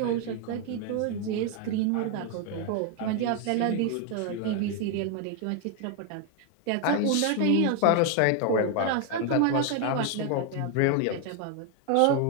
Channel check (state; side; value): different; both; correlation 0.01